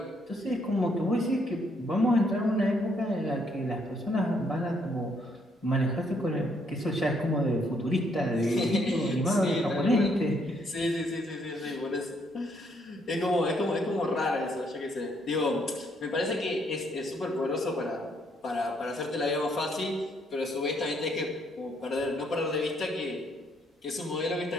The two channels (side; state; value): both; normal; correlation 0.70